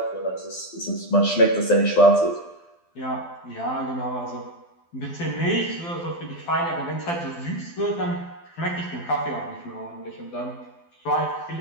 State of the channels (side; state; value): right; late; 12 ms